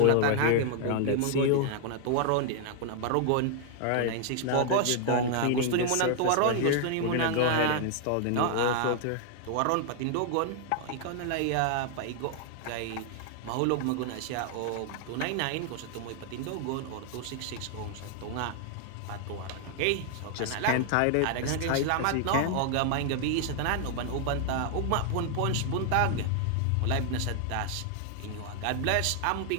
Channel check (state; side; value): different; both; correlation 0.00